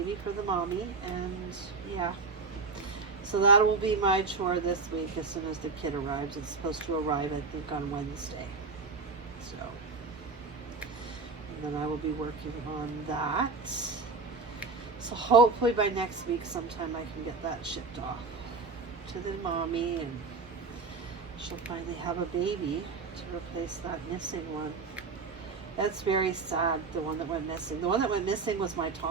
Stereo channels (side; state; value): left; quieter; 4.3 dB